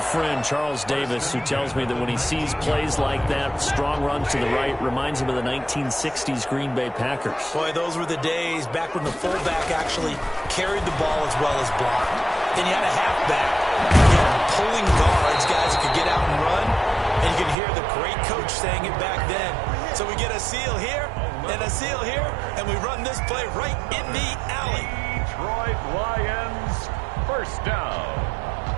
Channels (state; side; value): drops out; left; at 17.6 s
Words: Charles Davis, who tells me that when he sees plays like that, strong runs to the right, reminds him of the 1960s Green Bay Packers. Boy, those were the days back when the fullback actually carried the ball as well as blocked. Then you had a halfback, you had pulling guards, guys who could get out and run, and you could hear the great coach saying it back then. So we get a seal here and a seal here, and we run this play right in the alley. Detroit Lions, first down.